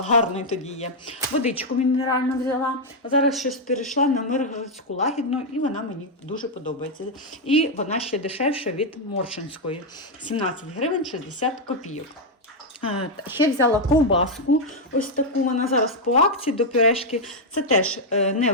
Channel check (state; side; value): normal; both; correlation 0.01